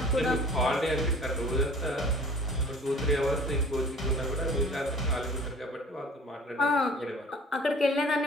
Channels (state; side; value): normal; both; correlation 0.46